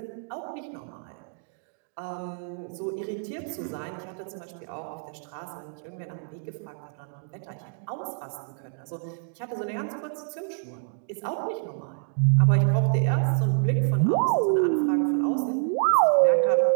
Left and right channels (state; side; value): silent; left; digital silence